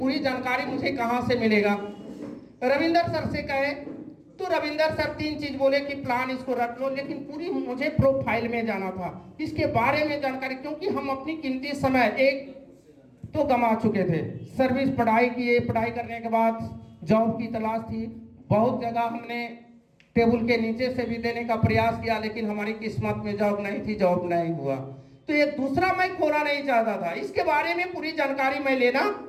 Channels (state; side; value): identical; both; correlation 1.00